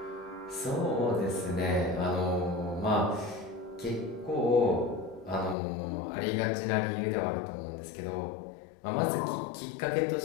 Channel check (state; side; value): drops out; right; at 5.6 s